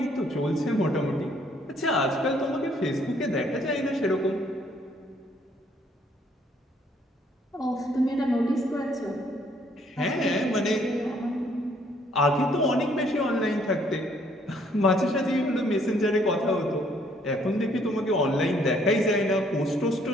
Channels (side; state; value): both; normal; correlation 0.65